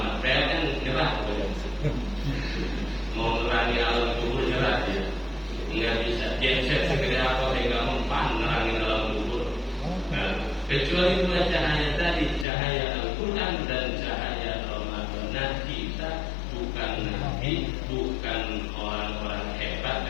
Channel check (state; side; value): drops out; right; at 12.5 s